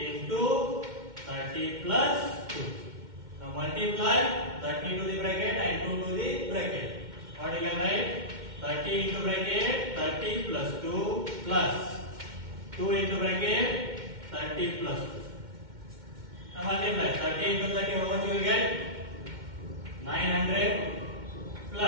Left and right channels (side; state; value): left; late; 2.1 ms